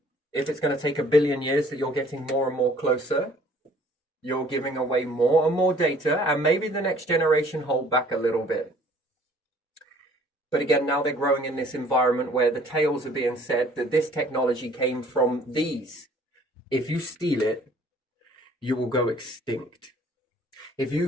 if it's going to take 1 billion years that you're getting more and more closer, you're giving away more and more data, and maybe the next generation hold back a little bit. But again, now they're growing in this environment where the tales are being said that this technology came from these. If you steal it, you will go extinct. If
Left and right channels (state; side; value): normal; both; correlation 0.56